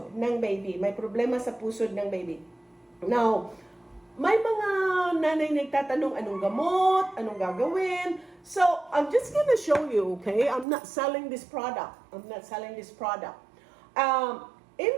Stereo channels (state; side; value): drops out; left; at 10.7 s